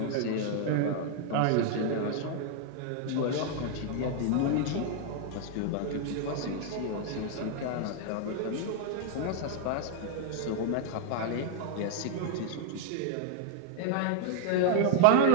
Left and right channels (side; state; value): both; different; correlation -0.01